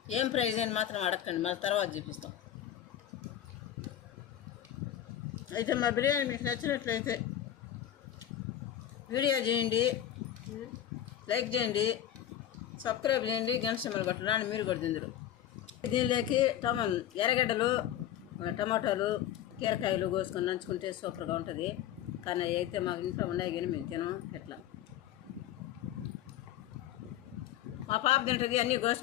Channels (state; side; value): quieter; right; 11.3 dB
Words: ఏం ప్రైజ్ అని మాత్రం అడగండి, మళ్ళీ తర్వాత చూపిస్తాం. అయితే మా బిర్యానీ మీకు నచ్చినట్లయితే వీడియో చేయండి, లైక్ చేయండి, సబ్స్క్రైబ్ చేయండి, గంట సింబల్ కొట్టండి. మీరు కూడా తిందరు. దీనిలోకి ఎర్రగడ్డలు, టమాటాలు, కీరకాయలు కోసుకొని నంచుకుంటే సూపర్గా ఉంటుంది. కానీ అయితే మాకు ఇంట్లో ఉన్నాయి కానీ మేము తినం. ఎట్లా మా పాప తింటుంది అన్నీ